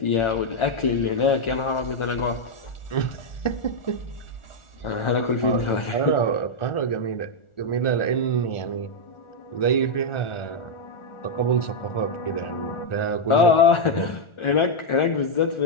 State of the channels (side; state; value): right; late; 1.4 ms